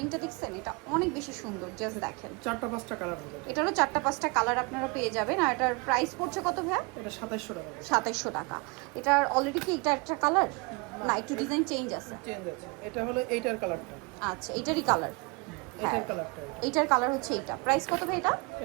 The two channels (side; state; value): left; quieter; 29.0 dB